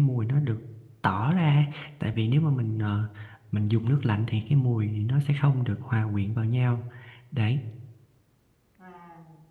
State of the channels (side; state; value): both; identical; correlation 1.00